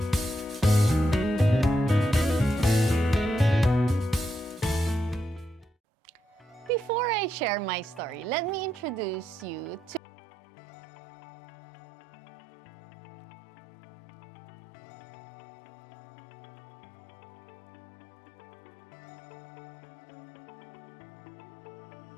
Before I share my story, let me introduce you to SARA model, or SARAH model. I used to manage process migrations offshore, and this was the framework used by companies I worked with before in change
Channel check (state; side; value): drops out; right; at 10.0 s